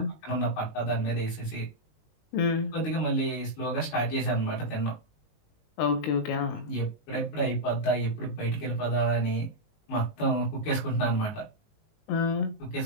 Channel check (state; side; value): late; right; 19 ms